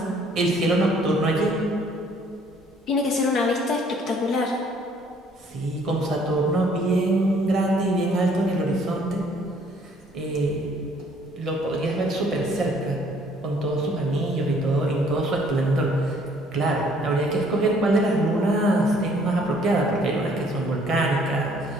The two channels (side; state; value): both; normal; correlation 0.61